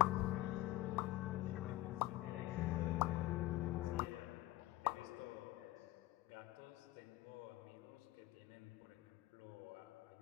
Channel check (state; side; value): quieter; right; 17.1 dB